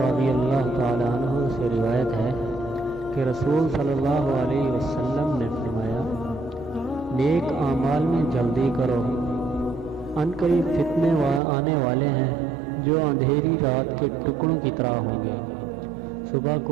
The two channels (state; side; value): drops out; left; at 11.4 s